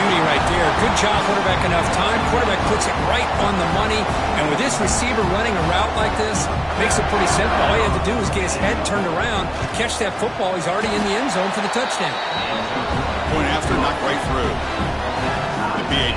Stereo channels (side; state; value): both; identical; correlation 1.00